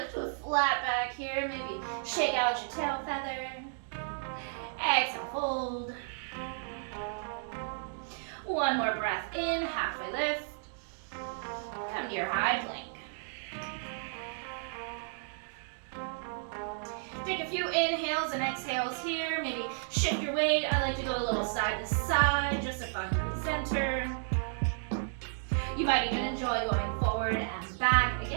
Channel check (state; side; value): silent; left; digital silence